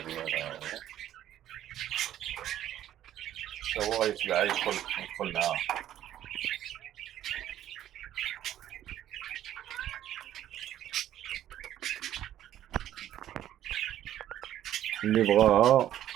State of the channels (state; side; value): quieter; left; 11.9 dB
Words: ديالها هو غيتبع يدخل معاها. اللي بغاها